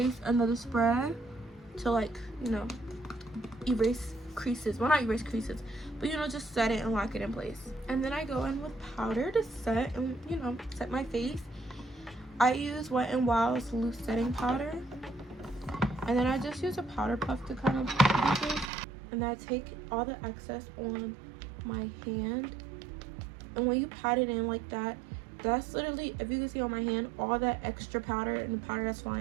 another spread to, like, you know, erase creases. Well, not erase creases, but you know, just set it and lock it in place. And then I go in with powder to set and, you know, set my face. I use Wet n Wild's loose setting powder, and then I just use a powder puff to kind of do this. And I take all the excess on my hand, and when you pat it in like that, that's literally, if you can see on my hand, all that extra powder and the powder that's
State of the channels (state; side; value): drops out; left; at 18.7 s